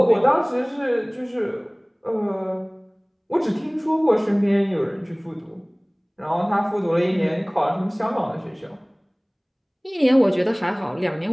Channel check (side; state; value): both; identical; correlation 1.00